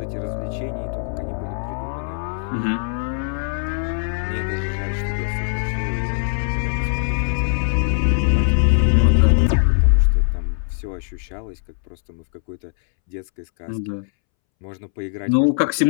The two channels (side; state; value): right; silent; 65 dB below the other